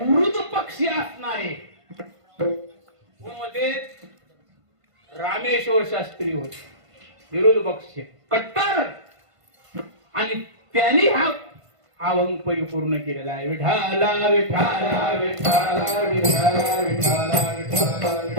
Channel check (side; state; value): left; late; 1.5 ms